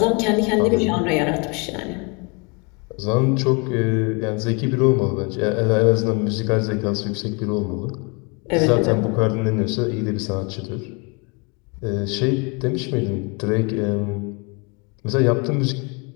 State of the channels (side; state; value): right; quieter; 31.7 dB